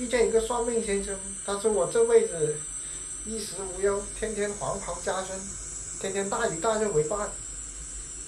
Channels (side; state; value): both; identical; correlation 1.00